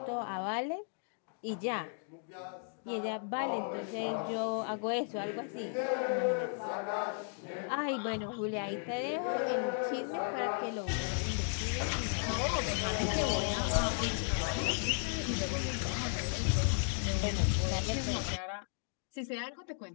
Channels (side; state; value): right; silent; 54 dB below the other